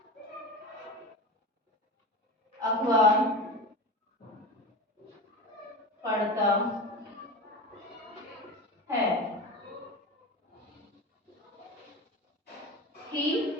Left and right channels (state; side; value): normal; both; correlation 0.28